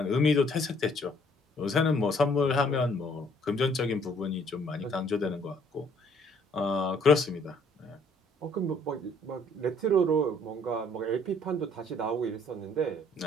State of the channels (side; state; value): both; normal; correlation 0.61